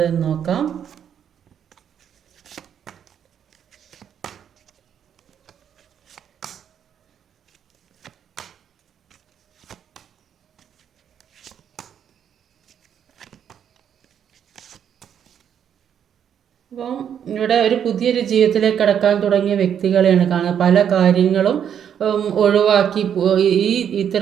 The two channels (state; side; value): quieter; left; 8.8 dB